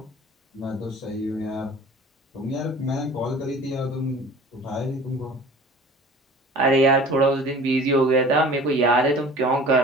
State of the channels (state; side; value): normal; both; correlation 0.44